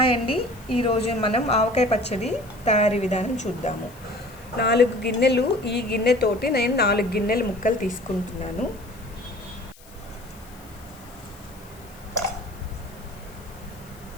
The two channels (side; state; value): left; noise; hiss, 24 dB below the sound